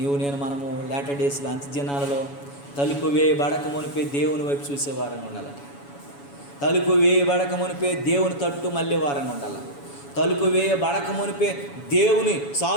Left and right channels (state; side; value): late; right; 7.1 ms